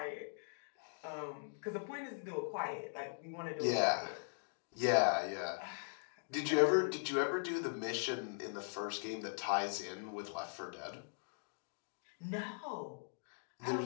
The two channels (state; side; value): silent; right; digital silence